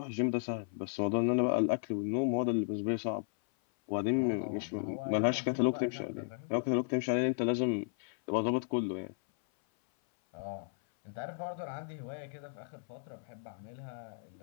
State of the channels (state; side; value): silent; right; 55 dB below the other